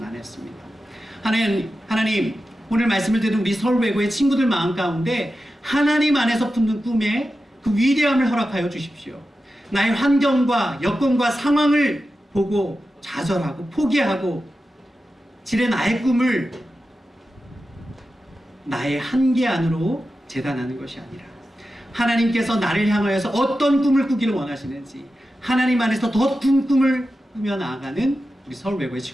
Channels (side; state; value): both; normal; correlation 0.92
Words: 하나님, 오늘 말씀을 듣는 우리 서울외고의 친구들 마음 가운데 하나님 안에서 품는 꿈에 그 위대함을 허락하여 주십시오. 나의 환경과 여건과 상황을 보고 좌절하고 포기하고 지레 나의 꿈을 나의 한계 안으로 재단하는 것이 아니라 하나님께서 나를 향하여서 어떤 꿈을 꾸기를 원하시는지 하나님 안에서 더 큰 꿈을 꾸며 나아가는 우리 서울외고의